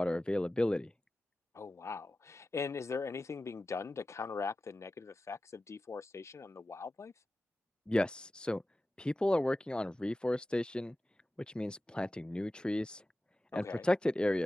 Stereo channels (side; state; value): both; normal; correlation 0.95